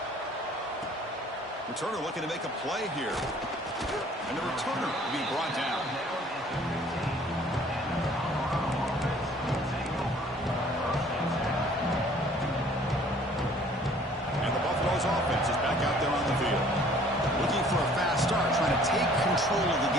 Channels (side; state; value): both; normal; correlation 0.55